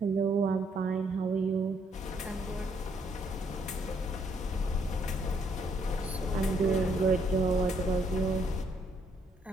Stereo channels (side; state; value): both; normal; correlation 0.70